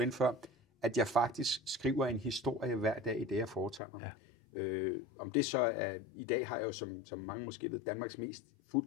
før, at jeg faktisk skriver en historie hver dag i det, jeg foretager mig. Ja. Om det så er, i dag har jeg jo, som mange måske ved, Danmarks mest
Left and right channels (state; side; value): drops out; right; at 3.8 s